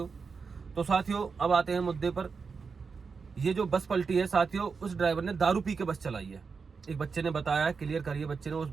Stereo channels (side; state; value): left; quieter; 5.2 dB